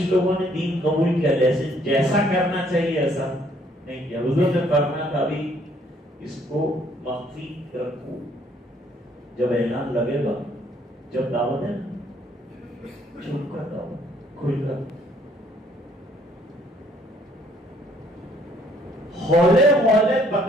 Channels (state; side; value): normal; both; correlation 0.64